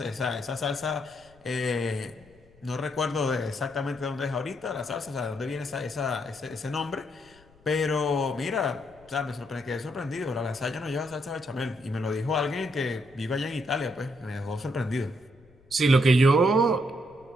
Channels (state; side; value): noise; left; rumble, 28 dB below the sound